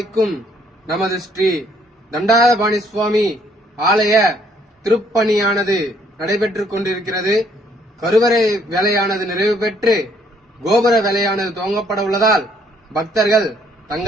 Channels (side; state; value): both; normal; correlation 0.66